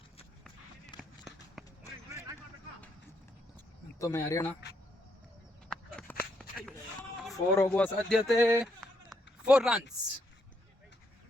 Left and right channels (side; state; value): both; normal; correlation 0.76